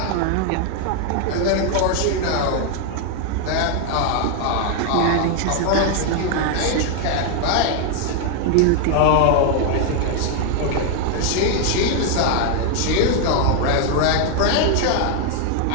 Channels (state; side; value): different; both; correlation 0.00